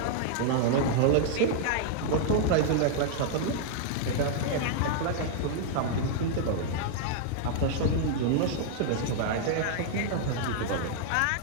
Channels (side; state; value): both; different; correlation -0.01